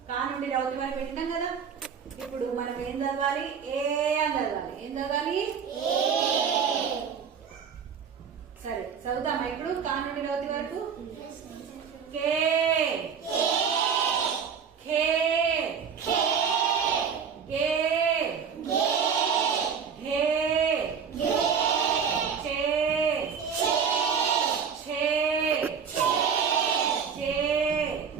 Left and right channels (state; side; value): quieter; left; 6.7 dB